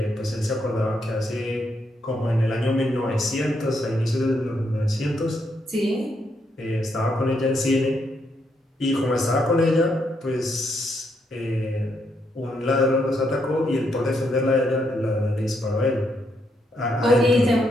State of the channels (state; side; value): normal; both; correlation 0.77